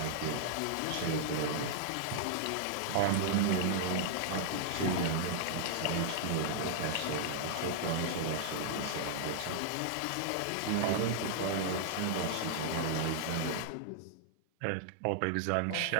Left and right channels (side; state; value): both; different; correlation -0.01